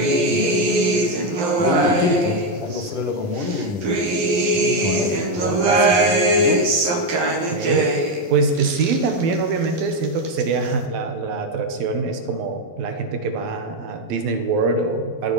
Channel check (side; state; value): left; late; 11 ms